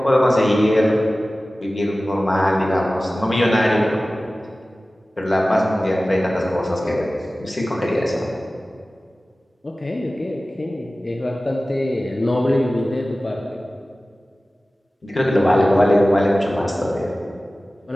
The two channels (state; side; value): normal; both; correlation 0.97